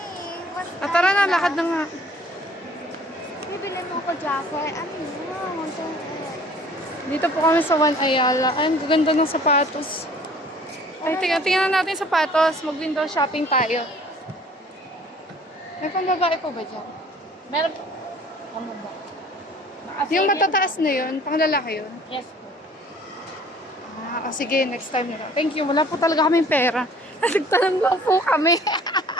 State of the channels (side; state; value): both; normal; correlation 0.52